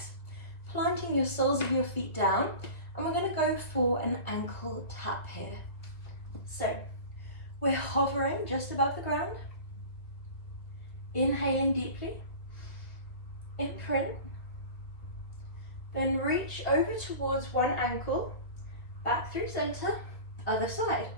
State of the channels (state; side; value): late; right; 2.2 ms